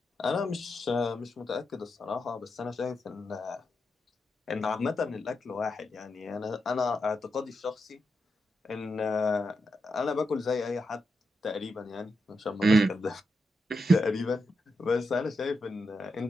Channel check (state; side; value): normal; both; correlation 0.86